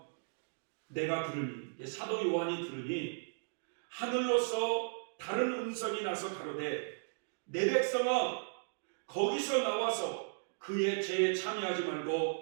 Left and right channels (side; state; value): left; silent; digital silence